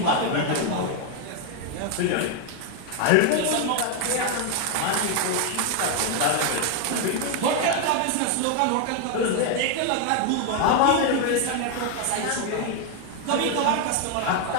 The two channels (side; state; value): both; different; correlation 0.01